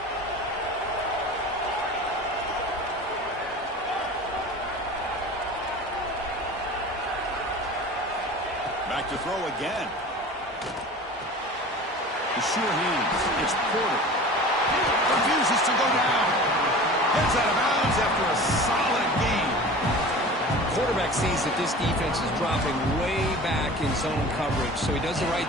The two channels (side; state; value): both; normal; correlation 0.38